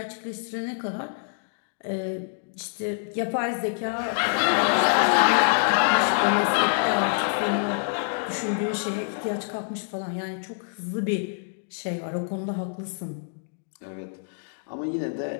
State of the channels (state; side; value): silent; right; digital silence